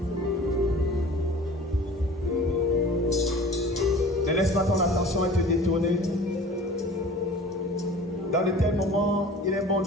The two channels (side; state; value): both; normal; correlation 0.43